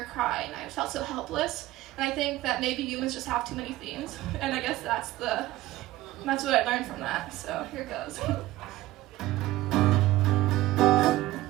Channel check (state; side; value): quieter; left; 16.7 dB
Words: cry, and I felt so helpless, and I think that maybe humans just have too many themes, and I guess that's what I learned from that, so here it goes.